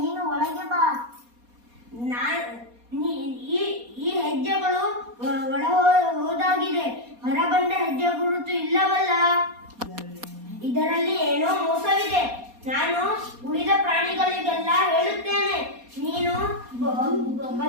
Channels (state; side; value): late; left; 4.2 ms